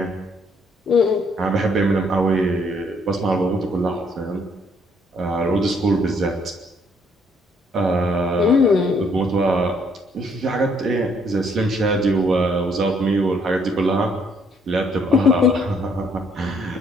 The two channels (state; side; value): normal; both; correlation 0.67